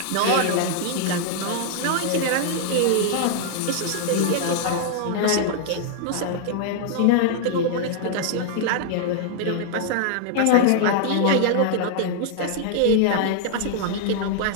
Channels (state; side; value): different; both; correlation -0.01